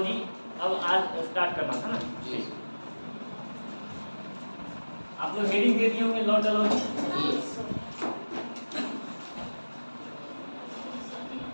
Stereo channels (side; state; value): both; inverted; correlation -1.00